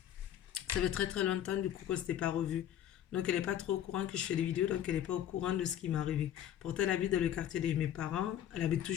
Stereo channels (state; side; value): quieter; right; 10.8 dB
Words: ça fait très longtemps du coup qu'on s'était pas revu. Donc elle n'est pas trop au courant que je fais des vidéos, donc elle n'est pas au courant de ce qui m'est arrivé. Pourtant elle habite dans le quartier de mes parents. Elle habite